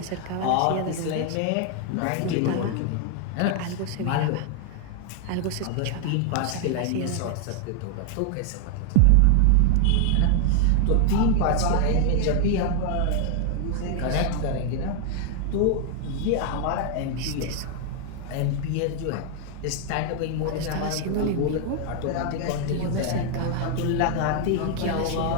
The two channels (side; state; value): both; different; correlation 0.00